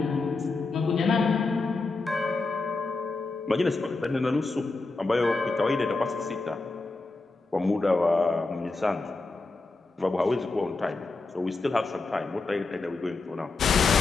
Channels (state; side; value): quieter; right; 3.6 dB